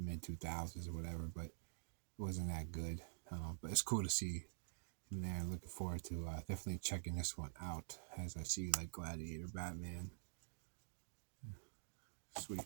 mid 2000s or whatever, but it wasn't that good. But it's cool to see him there. Looking forward to definitely checking this one out as I see like Gladiator, Batman.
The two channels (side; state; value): left; silent; digital silence